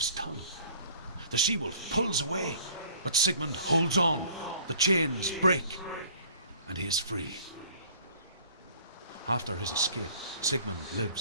tongue. The she-wolf pulls away, but Sigmund holds on. The chains break, and he is free. After his escape, Sigmund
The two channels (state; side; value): inverted; both; correlation -0.52